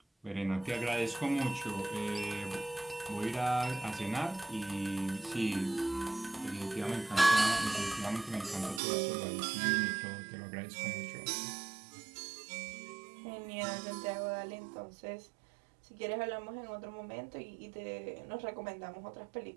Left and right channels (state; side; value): drops out; left; at 8.8 s